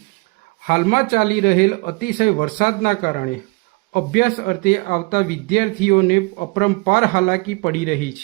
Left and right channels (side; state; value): left; quieter; 29.2 dB